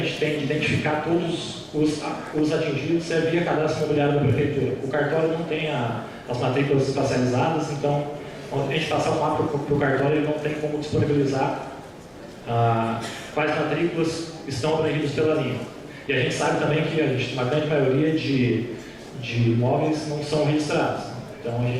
tem de identificar todos os atingidos é via cadastro imobiliário da Prefeitura. O cartório não tem as matrículas espacializadas, então quando a gente passar o mapa para o cartório, ele não tem como disponibilizar quais matrículas estão abrangidas pela linha. E a gente sabe também que uma grande maioria de imóveis não são registrados. Então a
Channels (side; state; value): both; identical; correlation 1.00